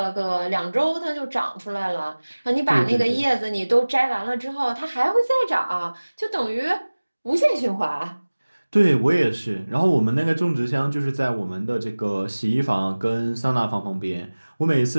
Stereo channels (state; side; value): inverted; both; correlation -1.00